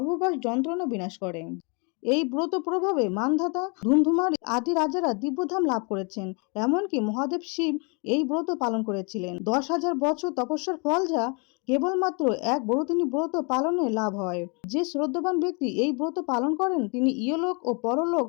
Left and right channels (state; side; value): quieter; right; 33.6 dB